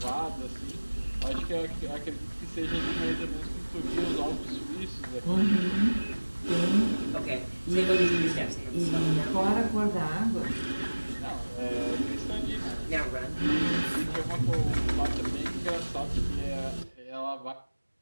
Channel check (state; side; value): inverted; both; correlation -1.00